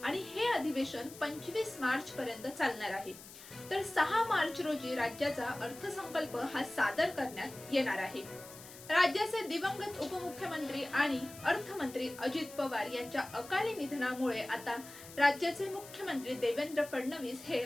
आणि हे अधिवेशन 25 मार्च पर्यंत चालणार आहे. तर 6 मार्च रोजी राज्याचा अर्थसंकल्प हा सादर करण्यात येणार आहे. राज्याचे दिवंगत उपमुख्यमंत्री आणि अर्थमंत्री अजित पवार यांच्या अकाली निधनामुळे आता राज्याचे मुख्यमंत्री देवेंद्र फडणवीस हे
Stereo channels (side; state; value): left; noise; hiss, 16 dB below the sound